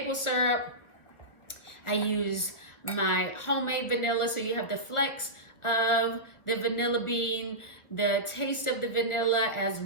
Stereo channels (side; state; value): right; late; 1.3 ms